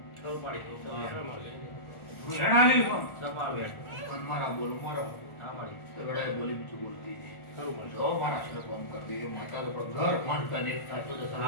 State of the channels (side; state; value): right; late; 1.4 ms